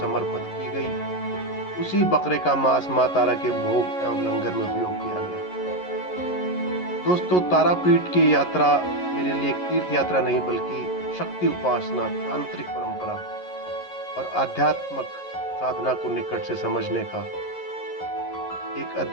की गई। उसी बकरे का मांस माँ तारा के भोग एवं लंगर में उपयोग किया गया। दोस्तों, तारापीठ की यात्रा मेरे लिए एक तीर्थ यात्रा नहीं बल्कि शक्ति उपासना, तांत्रिक परंपरा और आध्यात्मिक साधना को निकट से समझने का एक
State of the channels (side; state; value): right; late; 11 ms